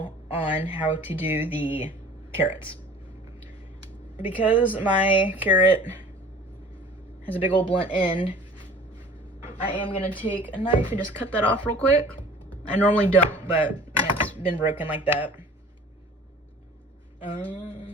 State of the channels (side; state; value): both; normal; correlation 0.46